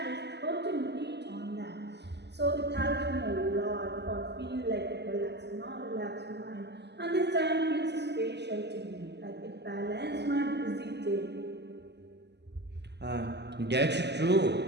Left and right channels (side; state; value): left; late; 0.50 ms